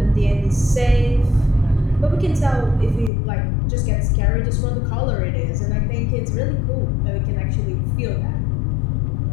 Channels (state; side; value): drops out; right; at 3.1 s